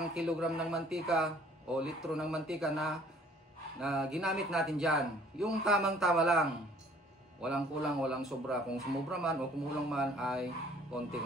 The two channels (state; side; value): normal; both; correlation 0.55